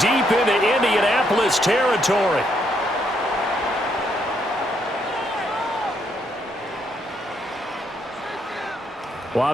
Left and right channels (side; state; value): both; normal; correlation 0.74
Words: into Indianapolis territory. Well,